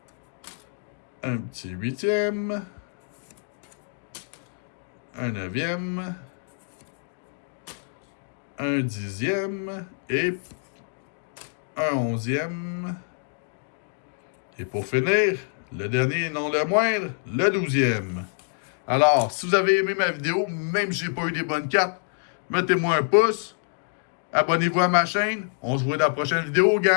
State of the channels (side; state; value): right; silent; digital silence